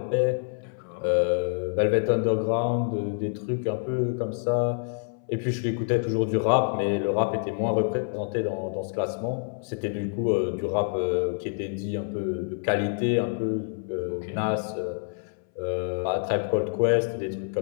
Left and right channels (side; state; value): right; silent; 60 dB below the other